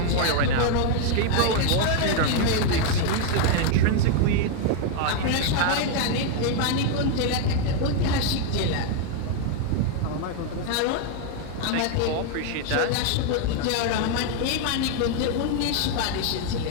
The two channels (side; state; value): both; different; correlation 0.00